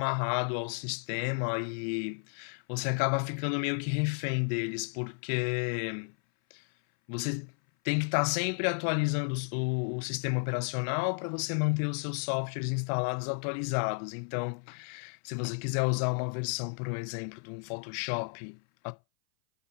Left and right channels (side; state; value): right; silent; 56 dB below the other